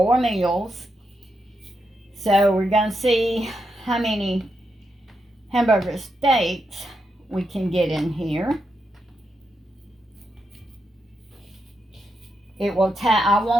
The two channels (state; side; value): normal; both; correlation 0.84